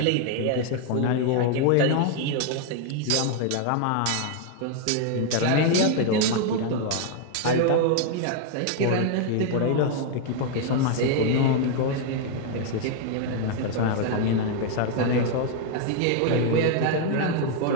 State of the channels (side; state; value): both; different; correlation 0.00